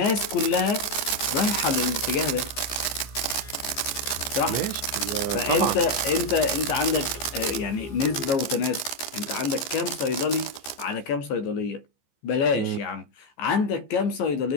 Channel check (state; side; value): late; right; 15 ms